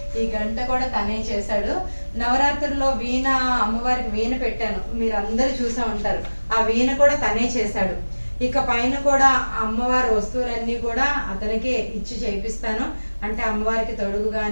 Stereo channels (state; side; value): inverted; both; correlation -1.00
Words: ఈ గంట కూడా తనే చేశాడు. నవరాత్రుల్లో వీణ, అమ్మవారికి వీణ పెట్టాను, మీరు అందరు చూసా ఉంటారు. ఆ వీణ కూడా తనే చేశాడు. ఇక పైన కూడా అమ్మవారి వస్తువులన్నీ కూడా అతనికే ఇచ్చి చేపిస్తాను. అంటే అమ్మవారికి తొడుగు